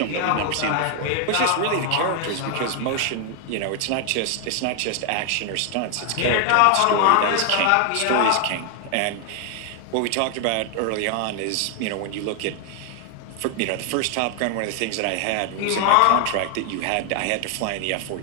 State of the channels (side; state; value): both; different; correlation 0.00